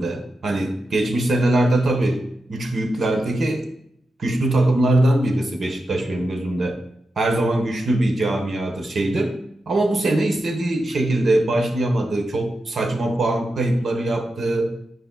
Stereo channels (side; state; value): both; normal; correlation 0.89